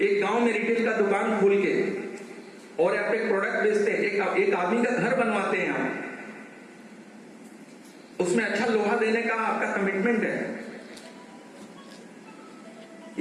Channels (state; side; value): identical; both; correlation 1.00